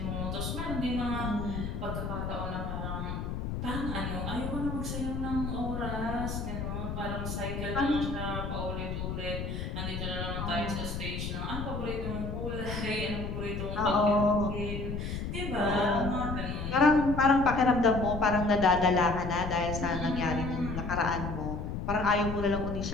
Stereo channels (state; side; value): noise; left; rumble, 4 dB below the sound